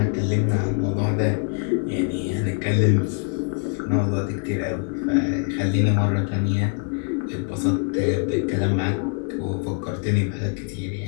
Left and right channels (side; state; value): right; quieter; 39.9 dB